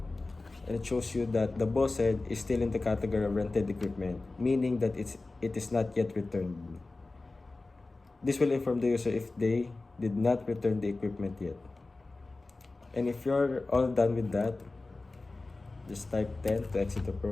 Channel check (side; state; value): right; quieter; 3.3 dB